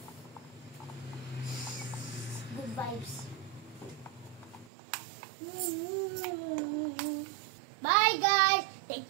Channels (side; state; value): left; drops out; at 4.7 s